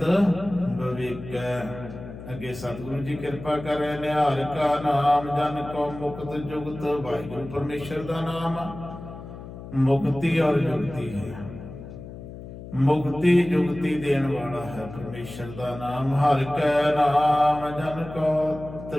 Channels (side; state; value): left; noise; hum, 13 dB below the sound